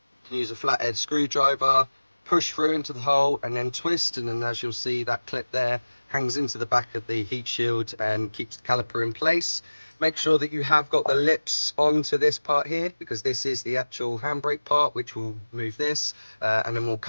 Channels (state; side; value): inverted; both; correlation -1.00